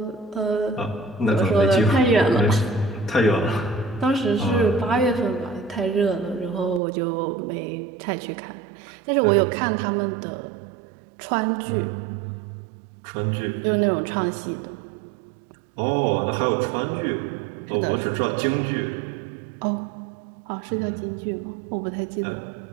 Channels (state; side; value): drops out; left; at 6.8 s